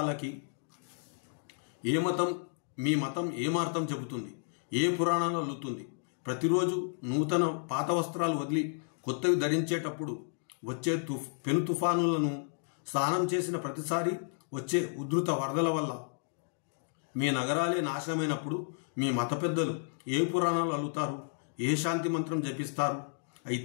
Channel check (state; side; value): silent; right; digital silence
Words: మీ మతం ఏమార్థం చెబుతుంది, ఏ పురాణాలు అల్లుతుంది? ప్రతిరోజు నూతన పాత వస్త్రాలు వదిలి కొత్తవి ధరించేటప్పుడు వచ్చే పెను తుఫానులను, స్నానం చేసిన ప్రతిసారి వచ్చే ఉధృత వరదల వల్ల మీ నగరాలే నాశనమైనప్పుడు మీ మత పెద్దలు ఏ పురాణాలు అల్లుతారు? ఏ శాంతి మంత్రం జపిస్తారు?